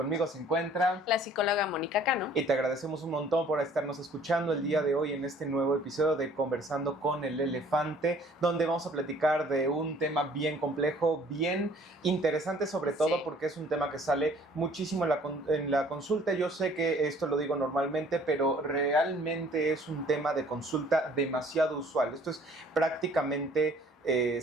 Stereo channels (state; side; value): normal; both; correlation 0.55